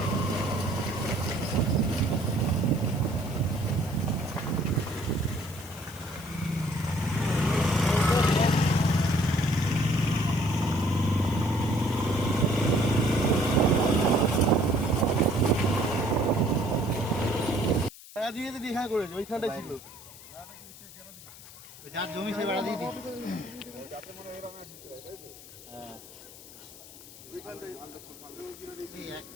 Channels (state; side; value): noise; left; hiss, 18 dB below the sound